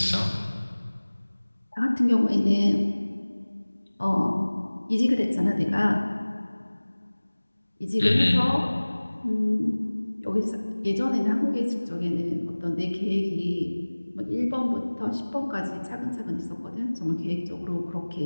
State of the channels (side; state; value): both; inverted; correlation -1.00